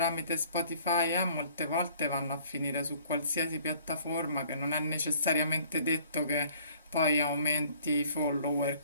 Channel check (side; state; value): both; inverted; correlation -0.56